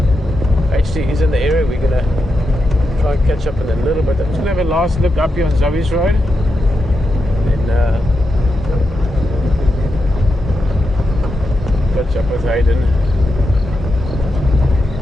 HT is in the area. We're gonna try and catch up in a little bit. I'm just gonna have a last look up here on Zoe's Road. Then catch up with Hayden.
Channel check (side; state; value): both; normal; correlation 0.87